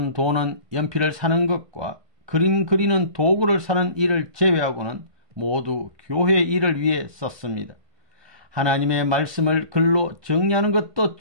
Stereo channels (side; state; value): left; late; 1.2 ms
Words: 돈은 연필을 사는 것과 그림 그리는 도구를 사는 일을 제외하고는 모두 교회 일을 위해 썼습니다. 하나님의 말씀을 글로 정리하는 것도